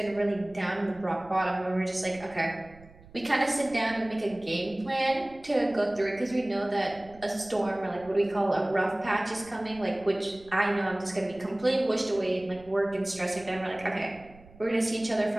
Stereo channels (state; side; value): noise; right; rumble, 23 dB below the sound